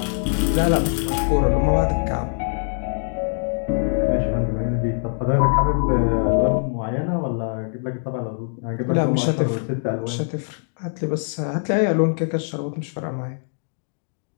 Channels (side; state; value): right; silent; digital silence